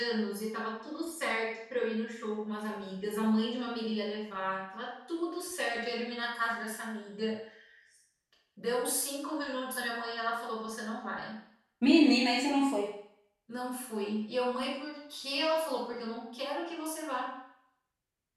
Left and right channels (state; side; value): identical; both; correlation 1.00